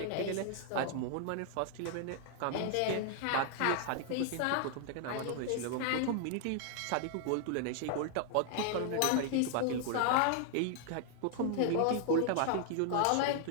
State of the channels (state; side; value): different; both; correlation 0.00